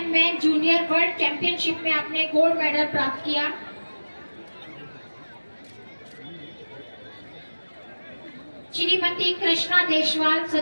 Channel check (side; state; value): both; inverted; correlation -1.00